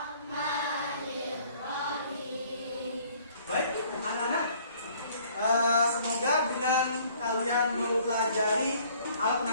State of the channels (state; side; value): inverted; both; correlation -0.58